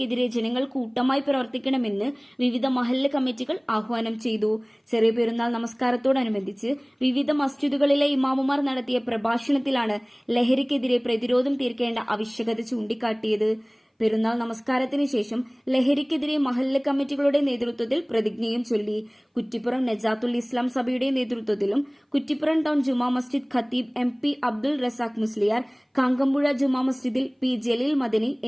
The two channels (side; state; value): both; identical; correlation 1.00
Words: ജനങ്ങൾ കൂട്ടമായി പ്രവർത്തിക്കണമെന്ന് വിവിധ മഹല്ല് കമ്മിറ്റികൾ ആഹ്വാനം ചെയ്തു. ചെറിയ പെരുന്നാൾ നമസ്കാരത്തോടനുബന്ധിച്ച് വിവിധ മസ്ജിദുകളിലെ ഇമാമുമാർ നടത്തിയ പ്രഭാഷണത്തിലാണ് ലഹരിക്കെതിരെ പ്രതിരോധം തീർക്കേണ്ട ആവശ്യകത ചൂണ്ടിക്കാട്ടിയത്. പെരുന്നാൾ നമസ്കാരത്തിന് ശേഷം ലഹരിക്കെതിരെ മഹല്ല് കമ്മിറ്റികളുടെ നേതൃത്വത്തിൽ പ്രതിജ്ഞയും ചൊല്ലി. കുറ്റിപ്പുറം നജാത്തുൽ ഇസ്ലാം സഭയുടെ നേതൃത്വത്തിലും കുറ്റിപ്പുറം ടൗൺ ജുമാ മസ്ജിദ് ഖത്തീബ് MP അബ്ദുൾ റസാഖ് മുസ്ലിയാർ, കാങ്കമ്പുഴ ജുമാ മസ്ജിദിൽ P ജലീൽ മദനി